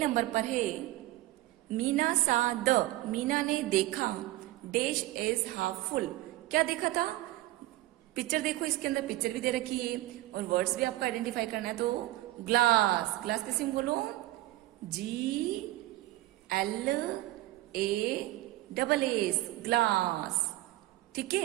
पर है, मीना सा द, मीना ने देखा डैश इज हाफ फुल। क्या देखा था? पिक्चर देखो, इसके अंदर पिक्चर भी दे रखी है और वर्ड्स भी आपको आइडेंटिफाई करना है। तो ग्लास, ग्लास कैसे बोलो? GLASS, glass. ठीक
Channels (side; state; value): left; quieter; 16.8 dB